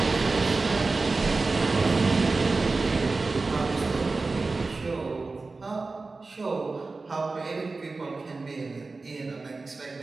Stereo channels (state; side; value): quieter; left; 3.7 dB